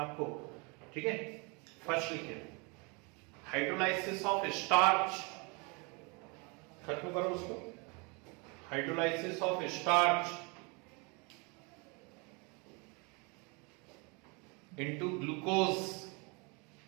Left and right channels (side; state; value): left; quieter; 30.8 dB